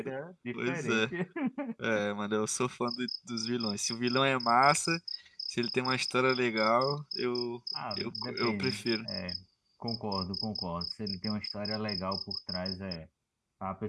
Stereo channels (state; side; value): identical; both; correlation 1.00